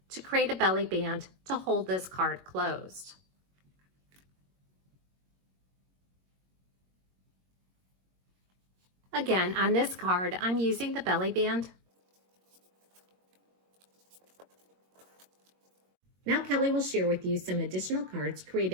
to create a belly band to hold this card closed. Again, on this card, I'm using the belly band. Now Kelly will share with you some additional cards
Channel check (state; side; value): late; left; 22 ms